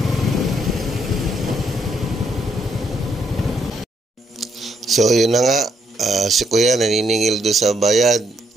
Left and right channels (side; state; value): both; normal; correlation 0.74